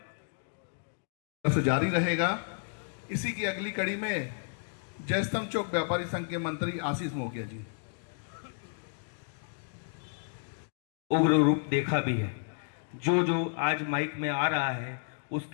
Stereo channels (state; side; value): silent; right; digital silence